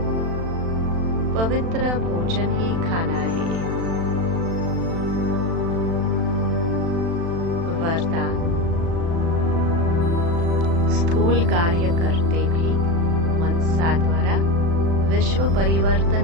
पवित्र भोजन ही खाना है। वरदान, स्थूल कार्य करते भी मनसा द्वारा विश्व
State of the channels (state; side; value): late; left; 36 ms